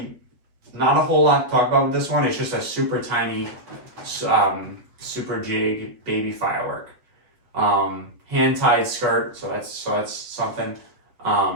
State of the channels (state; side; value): late; left; 7.9 ms